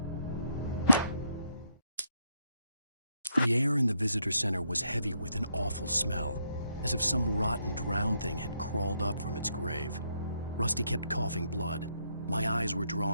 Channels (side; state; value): both; inverted; correlation -0.76